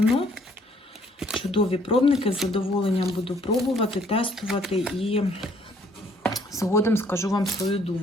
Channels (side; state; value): both; normal; correlation 0.62